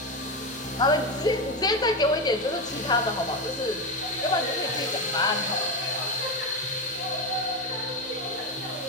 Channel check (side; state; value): both; normal; correlation 0.14